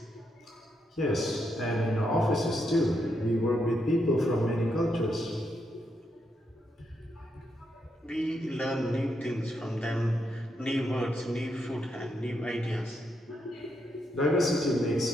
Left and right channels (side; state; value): both; normal; correlation 0.81